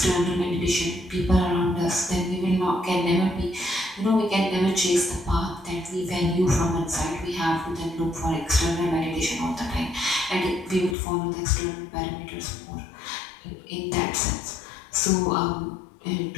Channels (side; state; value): right; drops out; at 11.0 s